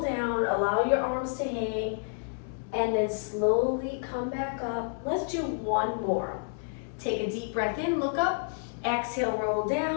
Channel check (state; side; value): silent; right; 58 dB below the other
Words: down, allow your arms to hang, and then slowly come back up. Let's do one more. Take a deep breath in, look up, exhale, roll